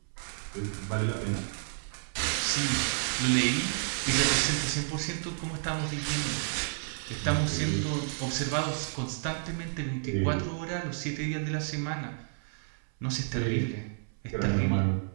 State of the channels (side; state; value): left; silent; 57 dB below the other